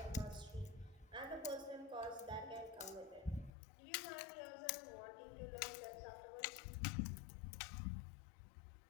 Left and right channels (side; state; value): right; drops out; at 3.5 s